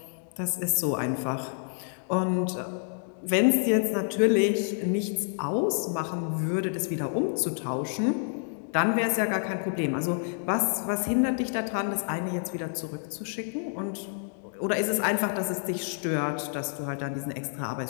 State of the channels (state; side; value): silent; right; digital silence